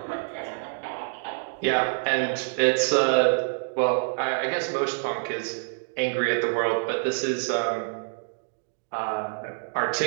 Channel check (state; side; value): silent; left; digital silence